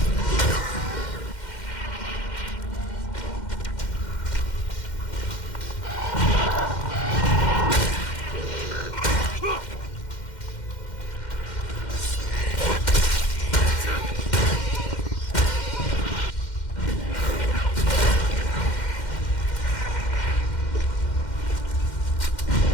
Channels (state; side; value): late; right; 2.1 ms